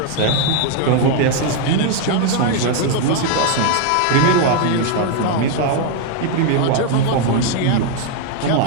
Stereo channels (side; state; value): both; different; correlation 0.00